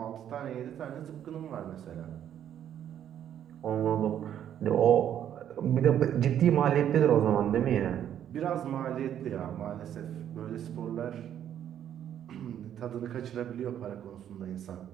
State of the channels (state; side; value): quieter; left; 10.1 dB